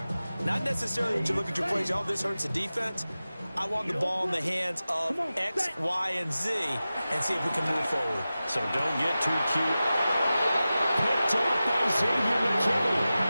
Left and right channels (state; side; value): inverted; both; correlation -0.95